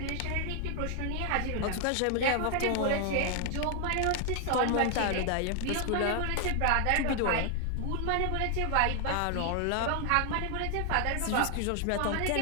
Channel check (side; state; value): both; different; correlation 0.00